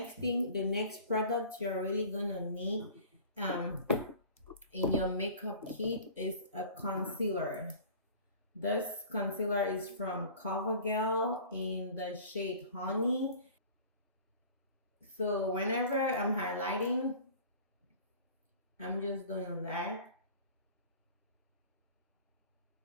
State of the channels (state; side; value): inverted; both; correlation -0.43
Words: product you're really gonna need in your makeup kit is a concealer. This concealer is from CoverGirl in the shade Honey. So whenever I'm highlighting, I'm just doing that.